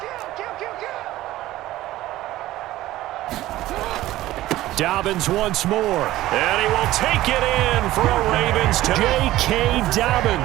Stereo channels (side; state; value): left; quieter; 15.8 dB